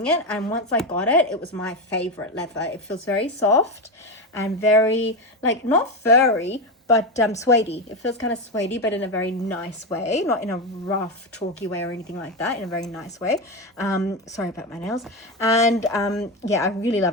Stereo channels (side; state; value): both; normal; correlation 0.14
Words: it, and once I got it, it was my favorite leather. It feels very soft and very, like, not furry, but suede-y. It feels kind of suede-y, but in a very nice way, not in a rough, chalky way or anything like that, in a very nice way. Sorry about my nails. And yeah, I really